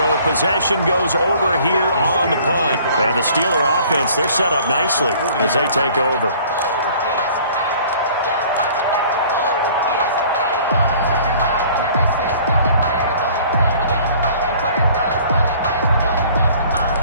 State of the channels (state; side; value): inverted; both; correlation -0.53